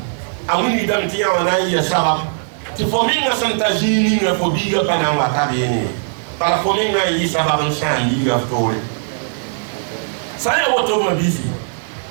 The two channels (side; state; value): left; silent; digital silence